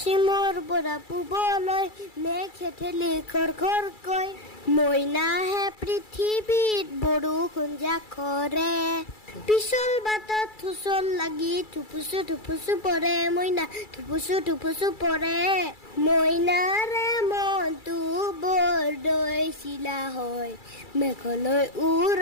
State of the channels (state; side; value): late; right; 2.3 ms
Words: পৰা পূবলৈ মেঘে ঠেলি খৰকৈ, মইনাহে পৃথিৱীত বৰষুণ জাকৰে। পিছল বাটত হুচল লাগি থুপুচু পৰে, মইনা থুপুচু পৰে। মইনাৰে মনটো বৰদৈ চিলা হয়, মেঘলৈ